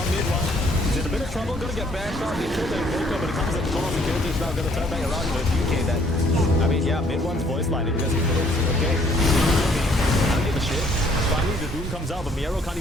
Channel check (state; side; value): normal; both; correlation 0.63